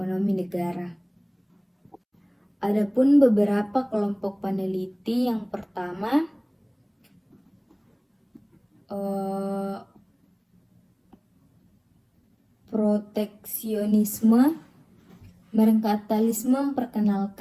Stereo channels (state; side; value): identical; both; correlation 1.00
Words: negara. Adapun beberapa kelompok peneliti, yang pertama proteksionisme. Merkantilisme